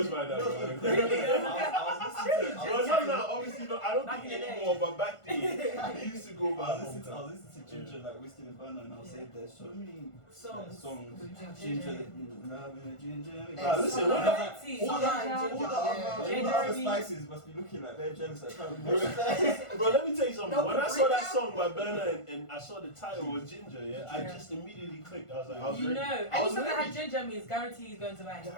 by that. Well, not obviously not. I don't think anymore, but back then I used to go by. I was listening to Ginger, like Whiskey and Burner, and I was saying there's so many songs. Ginger, loving Ginger. Listen, all the other spices must be looking like they're jealous. Bro, let me tell you something. When I saw that song by Burner and I saw the title was Ginger, yeah, I just immediately clicked. I was like, you know, any song that had ginger means guarantee he's going to buy.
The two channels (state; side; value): late; right; 1.5 ms